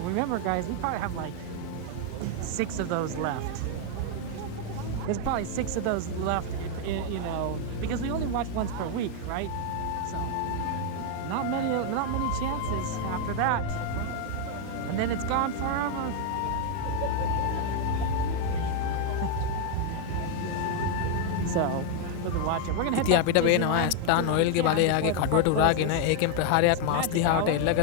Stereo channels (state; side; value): different; both; correlation 0.00